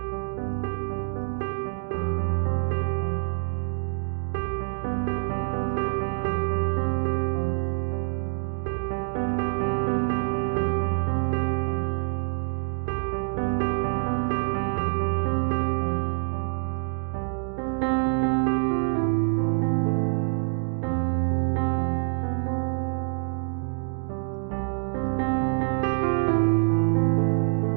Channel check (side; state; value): left; silent; 61 dB below the other